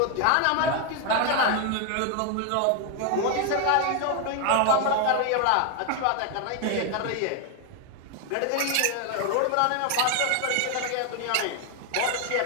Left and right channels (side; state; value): both; different; correlation 0.01